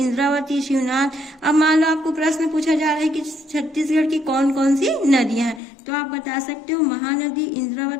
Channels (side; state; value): right; drops out; at 5.6 s